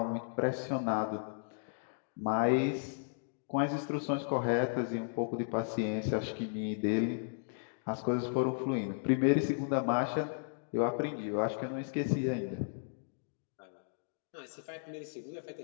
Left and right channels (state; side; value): silent; right; digital silence